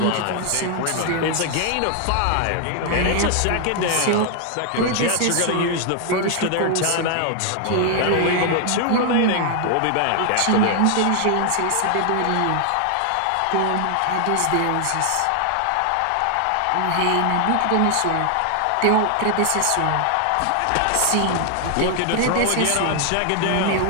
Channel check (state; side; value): different; both; correlation 0.00